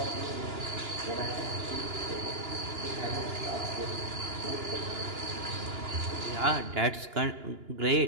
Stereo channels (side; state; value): left; late; 2.9 ms